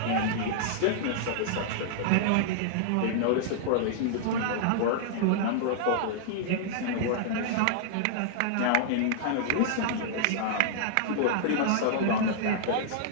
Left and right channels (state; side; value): different; both; correlation -0.01